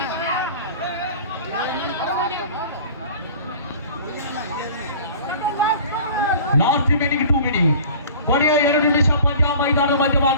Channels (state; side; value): inverted; both; correlation -0.43